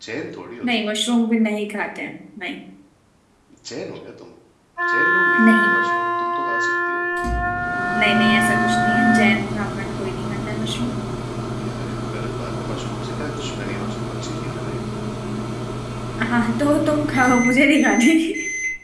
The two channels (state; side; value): identical; both; correlation 1.00